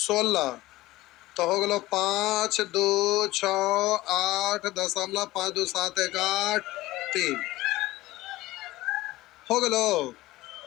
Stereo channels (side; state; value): right; quieter; 18.0 dB